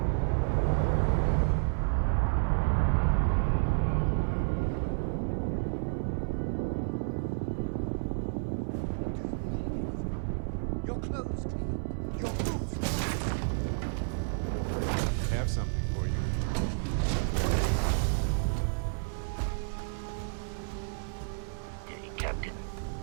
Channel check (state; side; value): silent; left; 55 dB below the other